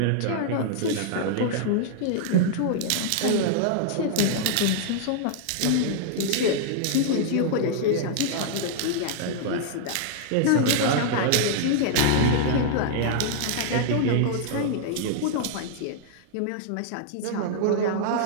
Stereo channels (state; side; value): different; both; correlation -0.01